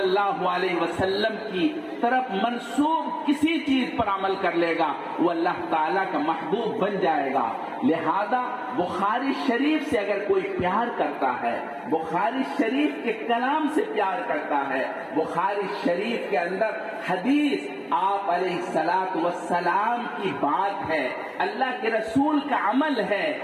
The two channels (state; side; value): identical; both; correlation 1.00